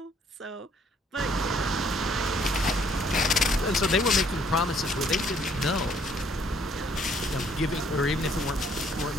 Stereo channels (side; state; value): both; normal; correlation 0.64